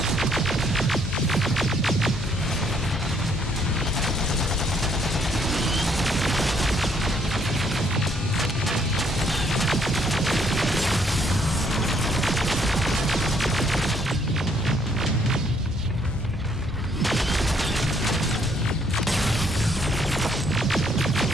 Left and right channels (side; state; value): left; noise; hum, 12 dB below the sound